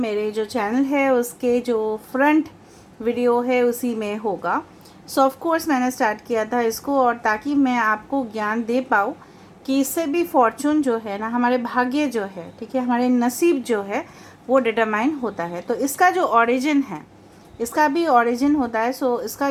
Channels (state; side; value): identical; both; correlation 1.00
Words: जो चैनल है उसके जो फ्रंट वीडियो है उसी में होगा। सो ऑफ कोर्स मैंने स्टार्ट किया था इसको, और ताकि मैं आपको ज्ञान दे पाऊँ कि इससे भी फॉर्चून जो है ना, हमारे भाग्य जो है, ठीक है, हमारे नसीब जो है वो डिटरमाइन होता है। तो इसका जो ओरिजिन है, इसका भी ओरिजिन होता है। सो इसका